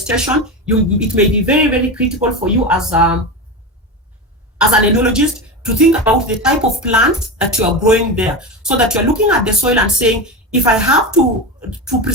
it may be very, very critical for you as an enologist to think about the type of plants that you are growing there, so that you're looking at the soil and saying, if I have to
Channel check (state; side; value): normal; both; correlation 0.20